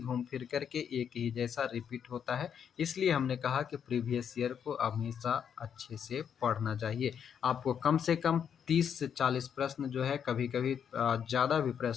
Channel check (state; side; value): quieter; right; 8.0 dB